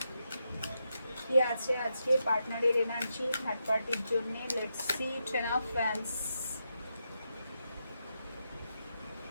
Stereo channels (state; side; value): inverted; both; correlation -0.85